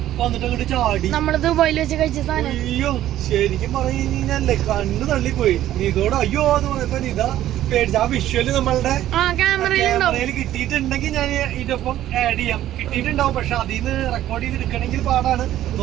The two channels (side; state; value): left; quieter; 12.9 dB